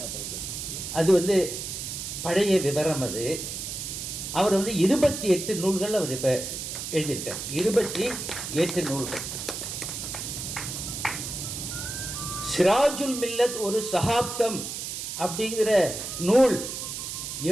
அது பழைய விவரம். அது அவர் 28 நூல்கள் அவர் இப்ப எழுதியிருக்கார். 28 நூல்கள். சிராஜுல் மில்லத் ஒரு சகாப்தம் அப்படிங்கிற நூல்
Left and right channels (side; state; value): right; noise; hiss, 6 dB below the sound